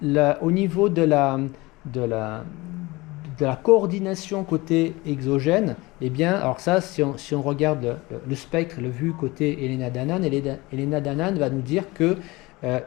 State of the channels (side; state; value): right; quieter; 22.1 dB